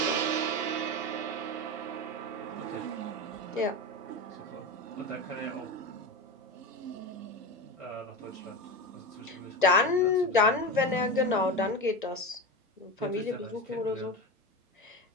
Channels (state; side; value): normal; both; correlation 0.21